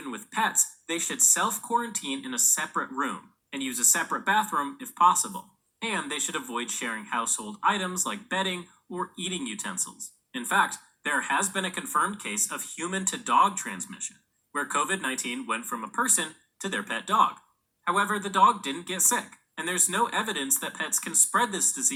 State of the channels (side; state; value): both; identical; correlation 1.00